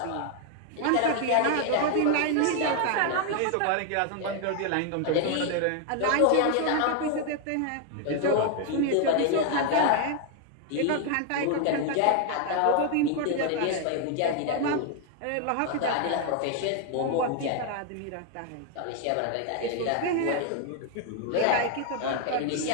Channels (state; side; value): different; both; correlation 0.00